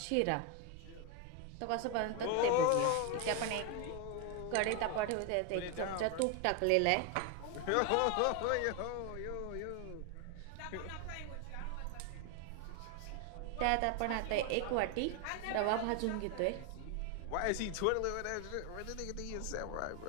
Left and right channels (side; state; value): both; different; correlation 0.01